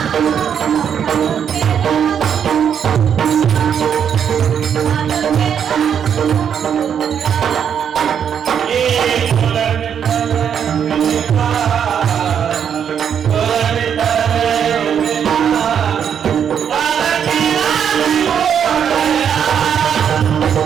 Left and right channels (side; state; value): left; quieter; 8.1 dB